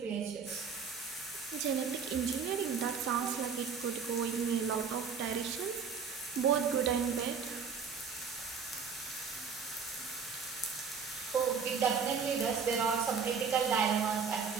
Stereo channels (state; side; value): quieter; left; 6.0 dB